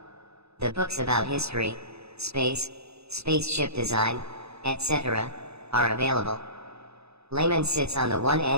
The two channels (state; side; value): late; left; 0.79 ms